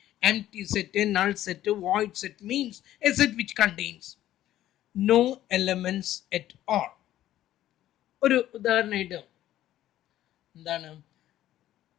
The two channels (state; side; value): quieter; right; 13.3 dB